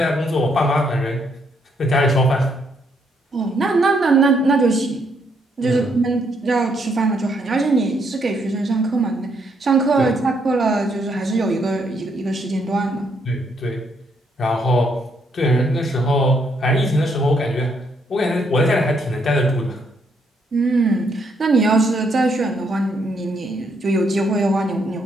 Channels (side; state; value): both; normal; correlation 0.73